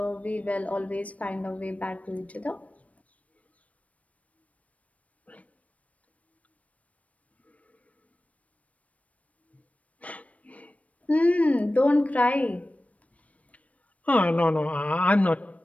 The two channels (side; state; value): right; late; 0.067 ms